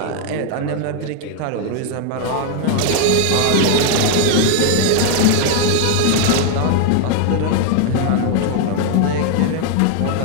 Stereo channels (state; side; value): different; both; correlation 0.00